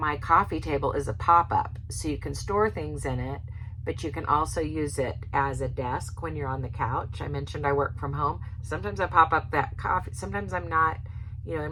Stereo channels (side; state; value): both; identical; correlation 1.00